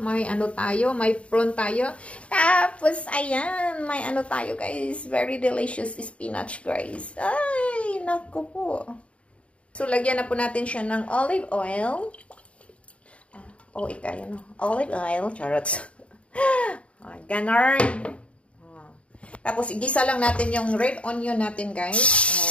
may prawn tayo. Tapos ayan, may tayo guys. Very delicious spinach guys. Ay, naku po. So lagyan na po natin siya ng olive oil. Olive oil, charots. Ganon. Tapos, igisa lang natin yung red onion natin, guys.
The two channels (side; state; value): right; late; 0.062 ms